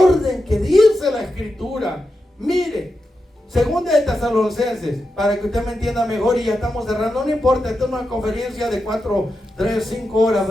que dice la Escritura. Mire, segunda de Tesalonicenses, para que usted me entienda mejor, y ya estamos cerrando, no importa, esto es una conferencia de 4, 3, 5 horas,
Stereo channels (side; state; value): both; normal; correlation 0.88